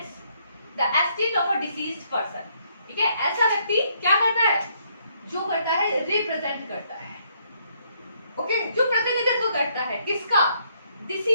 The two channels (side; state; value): both; inverted; correlation -0.71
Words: the estate of a deceased person. ठीक है, ऐसा व्यक्ति क्या करता है, जो करता है रिप्रेजेंट करता है, ओके, जो प्रतिनिधित्व करता है किसका,